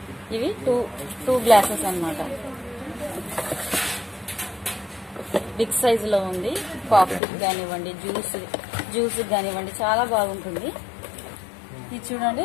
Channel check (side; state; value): right; drops out; at 7.2 s